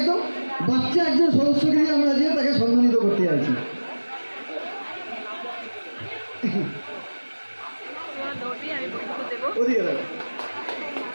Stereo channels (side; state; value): both; inverted; correlation -1.00